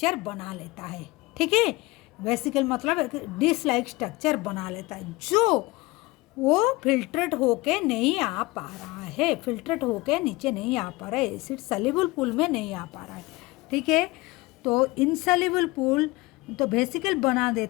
बना लेता है, ठीक है, वेसिकल मतलब एक डिश लाइक स्ट्रक्चर बना लेता है, जो वो फिल्ट्रेट होके नहीं आ पा रहा है, फिल्ट्रेट होके नीचे नहीं आ पा रहा है, एसिड सॉल्युबल पूल में नहीं आ पा रहा है, ठीक है। तो इनसॉल्युबल पूल तो वेसिकल बना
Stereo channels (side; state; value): right; quieter; 22.1 dB